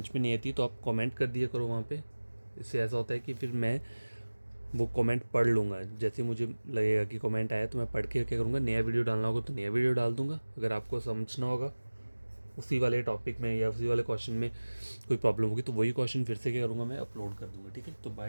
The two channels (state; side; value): inverted; both; correlation -1.00